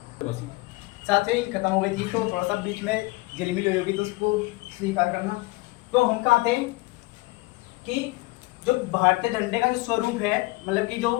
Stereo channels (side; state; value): right; quieter; 22.8 dB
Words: बस। साथियों इंक खत्म हो गई थी तो थोड़ा सा बीच में झिलमिल हुई होगी तो उसको स्वीकार करना। तो हम कहा थे कि जो भारतीय झंडे का जो स्वरूप है, मतलब कि जो